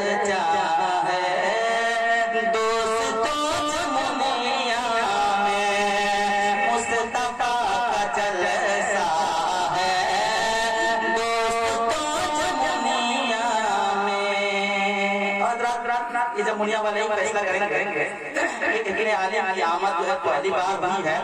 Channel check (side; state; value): both; identical; correlation 1.00